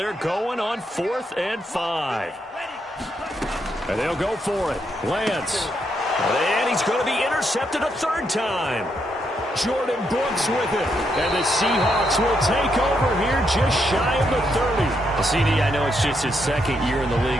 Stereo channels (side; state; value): both; normal; correlation 0.78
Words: going on 4th and 5. And they'll go for it. Lance. And he's going to be intercepted a 3rd time. Jordan Brooks with it. And the Seahawks will take over here just shy of the 30. Well, CD, I know it's just his 2nd year in the